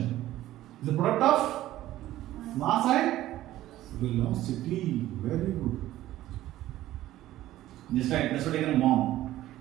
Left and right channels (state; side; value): quieter; left; 14.6 dB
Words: Is a product of mass and velocity. Very good. Just like that's what I can mom.